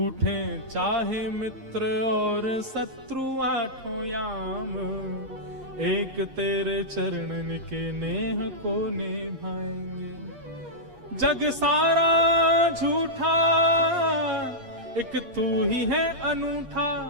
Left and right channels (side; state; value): left; late; 8.7 ms